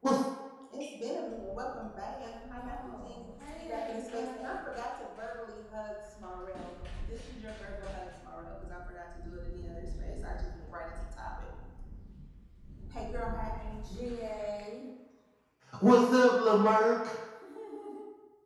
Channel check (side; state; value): both; identical; correlation 1.00